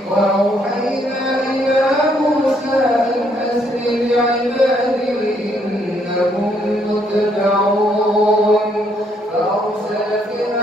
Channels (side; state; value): both; normal; correlation 0.70